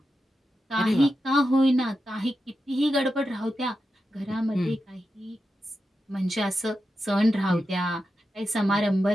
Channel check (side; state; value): both; normal; correlation 0.89